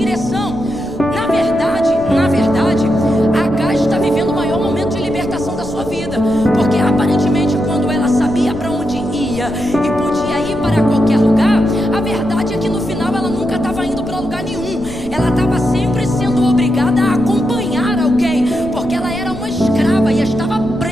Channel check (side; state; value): left; noise; rumble, 15 dB below the sound